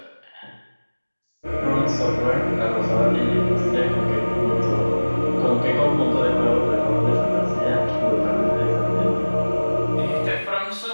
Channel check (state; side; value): inverted; both; correlation -1.00